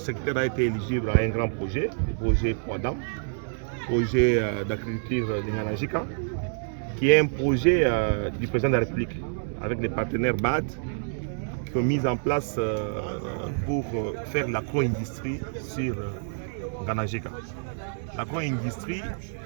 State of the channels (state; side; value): silent; left; 59 dB below the other